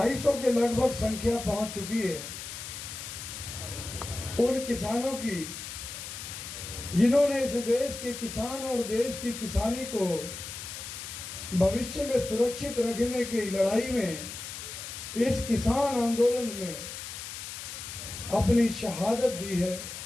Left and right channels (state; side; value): noise; left; hiss, 9 dB below the sound